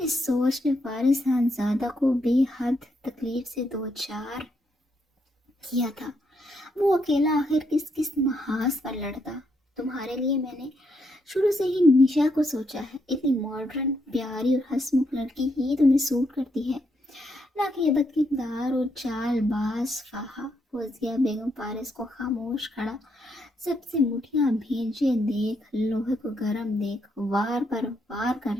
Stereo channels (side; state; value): both; normal; correlation 0.77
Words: سوچ نے فارس صاحبزادہ کو بے حد تکلیف سے دوچار کیا تھا۔ وہ اکیلا آخر کس محاذ پر لڑتا؟ تمہارے لیے میں نے شروع سے ہی نشا کو سوچا ہے، اتنی ماڈرن، پیاری اور ہنسمکھ لڑکی ہی تمہیں سوٹ کرتی ہے، نہ کہ یہ بدکردار اور چال باز فہا۔ فوزیہ بیگم فارس کو خاموش کھڑا سب سے مٹھیاں بھیجے دیکھ، لوہے کو گرم دیکھ وار پر وار کر